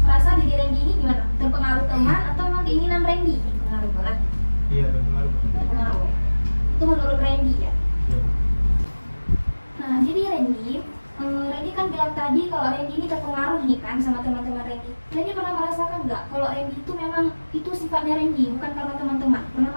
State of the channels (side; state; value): both; inverted; correlation -1.00